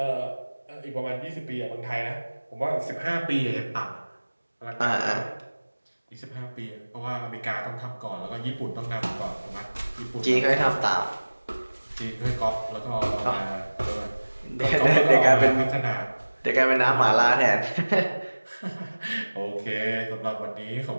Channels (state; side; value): inverted; both; correlation -1.00